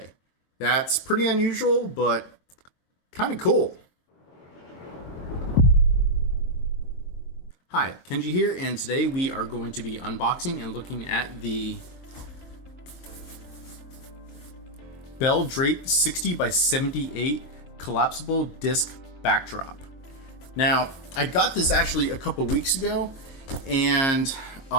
That's pretty unusual, but kind of cool. Hi, Kenji here, and today we are going to be unboxing and looking at the Belle Drape 60 by 78 collapsible disc backdrop. Now, I got this actually a couple weeks ago, and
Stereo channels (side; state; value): right; late; 22 ms